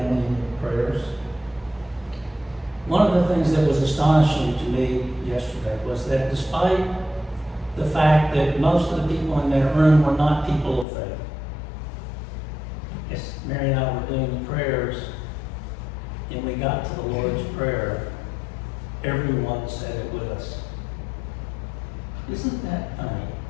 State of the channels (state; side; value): drops out; right; at 10.9 s